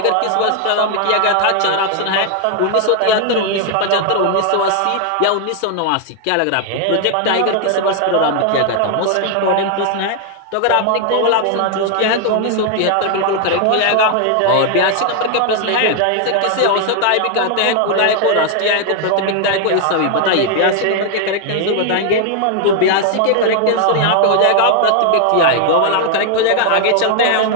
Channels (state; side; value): different; both; correlation 0.00